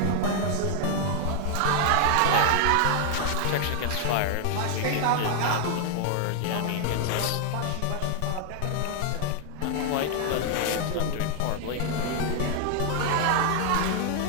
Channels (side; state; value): both; different; correlation 0.00